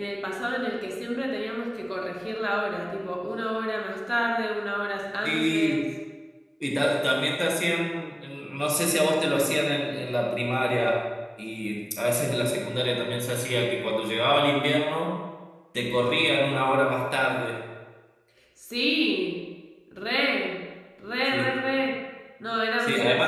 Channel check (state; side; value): identical; both; correlation 1.00